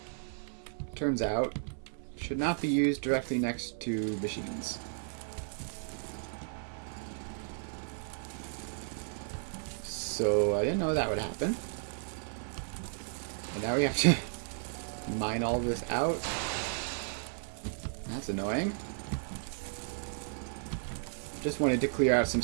turns out, should not be used directly next to machines. So I didn't know that would happen. And now we have to mine all this out. That's annoying. Just wanted to clear out some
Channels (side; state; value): left; silent; 55 dB below the other